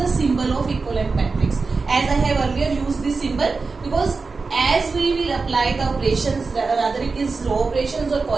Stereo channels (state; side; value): quieter; left; 4.3 dB